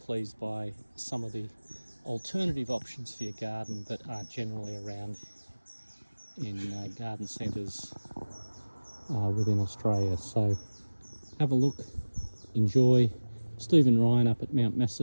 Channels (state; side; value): inverted; both; correlation -1.00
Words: by some of the alternative options for your garden that aren't generally around in garden centres within Australia. So have a look, enjoy. Stephen Ryan up at Mount